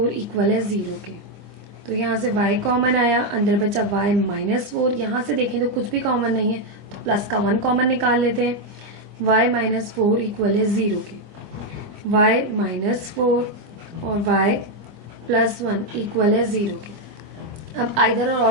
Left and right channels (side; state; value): left; late; 24 ms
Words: इक्वल है 0 के। तो यहाँ से y कॉमन आया, अंदर बचा y -4। यहाँ से देखें तो कुछ भी कॉमन नहीं है, तो प्लस का 1 कॉमन निकाल लेते हैं, y -4 इक्वल है 0 के। y -4 और y +1 इक्वल है 0 के। अब आइदर